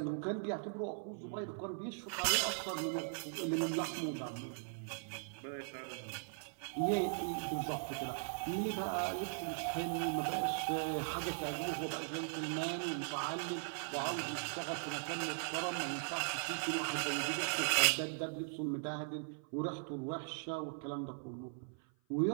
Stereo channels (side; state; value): left; silent; 51 dB below the other